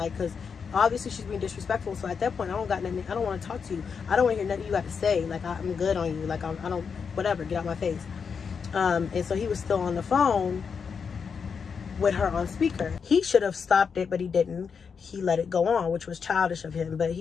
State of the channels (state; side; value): quieter; right; 6.1 dB